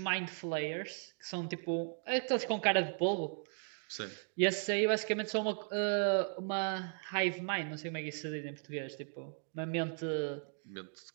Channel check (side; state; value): left; silent; 53 dB below the other